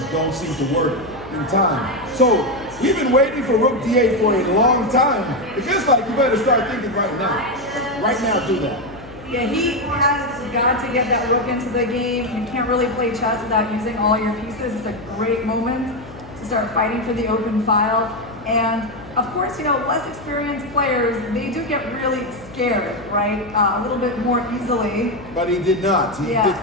don't seem to work in time. So we've been waiting for rook d8 for a long time. It feels like you better start thinking right now. Right now, do that. Yeah, he has got to get that rook into the game. You can't really play chess without using all your pieces. It's a great moment to start fighting for the open file. And of course, you know, less experienced players, they do get really scared, right? A little bit more easily. But he did not. He did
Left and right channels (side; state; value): left; noise; hum, 18 dB below the sound